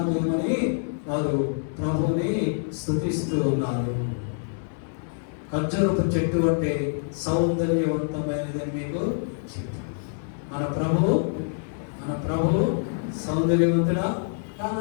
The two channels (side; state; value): right; silent; 61 dB below the other